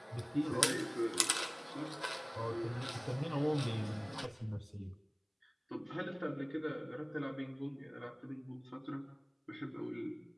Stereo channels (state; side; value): identical; both; correlation 1.00